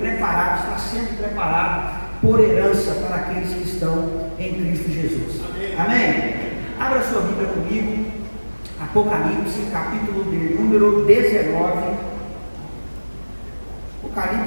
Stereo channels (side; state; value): both; inverted; correlation -1.00